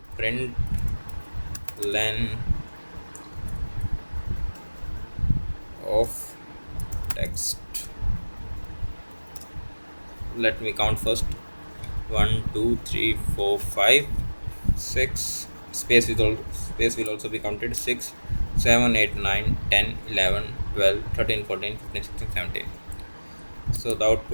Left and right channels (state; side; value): inverted; both; correlation -1.00